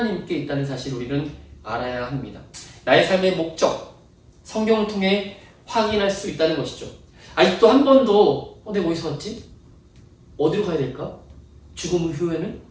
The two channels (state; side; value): identical; both; correlation 1.00